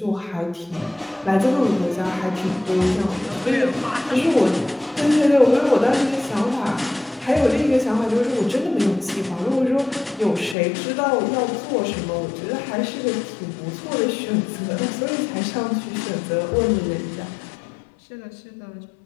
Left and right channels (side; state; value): right; drops out; at 10.6 s